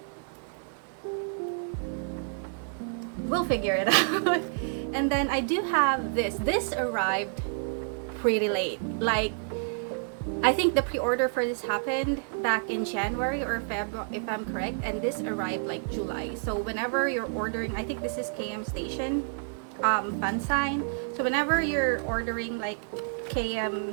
we'll figure it out. And then I do have this. This arrived pretty late. Like, I think the pre-order for this happened back in January or February, if I'm correct, and this arrived like July. So whenever you're ordering, I think this is KM Station fan sign. So whenever you're ordering like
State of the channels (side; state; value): left; silent; 58 dB below the other